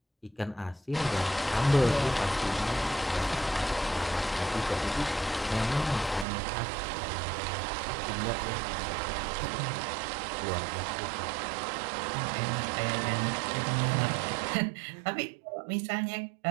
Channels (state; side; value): drops out; left; at 6.2 s